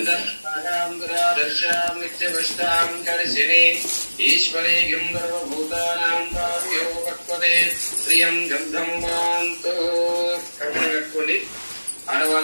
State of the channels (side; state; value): both; inverted; correlation -1.00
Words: नित्यवष्टाम करिशिनी ईश्वरी गिंधर्वभूतानां भाव्यो भक्पदे प्रियं गंधं वान्तु కర్మను కట్టుకోండి.